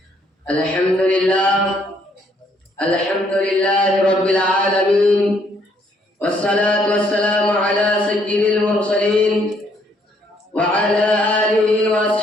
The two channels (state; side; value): normal; both; correlation 0.68